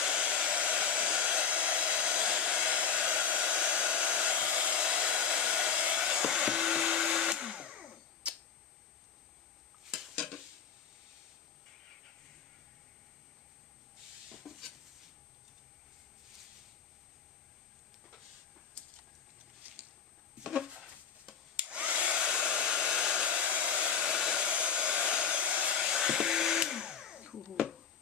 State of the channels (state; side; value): quieter; right; 7.0 dB